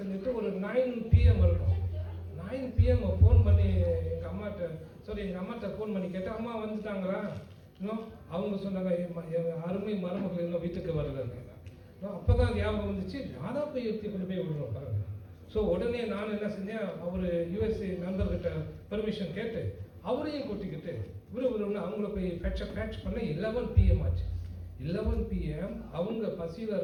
ஒரு 9 PM இருக்கும். 9 PM ஃபோன் பண்ணி எங்கள் அம்மாட்ட ஃபோன் பண்ணி கேட்டேன், அம்மா வந்துட்டாங்களா? இன்னும் அவங்க சொன்னாங்க, அருமை மருமகள் இன்னும் வீட்டுக்கு வரலன்னு. அப்போ தான் ஞாபகம் வந்துச்சு, நான் தான் போய் எடுத்து கொண்டு போய் விடுறோம் பாருங்க. ஸோ உடனே நான் என்ன செஞ்சேன், அவர் USA நண்பர்கிட்ட பெர்மிஷன் கேட்டு அவரையும் கூட்டிக்கிட்டு விறுவிறுன்னு அவங்கள போய் பேட்ச் பண்ண 11 PM ஆச்சு. 11 PM அவங்க பசியில்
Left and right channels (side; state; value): both; identical; correlation 1.00